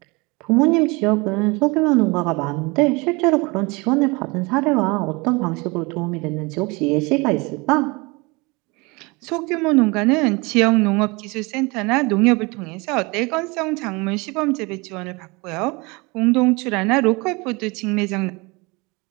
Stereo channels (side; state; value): left; quieter; 26.4 dB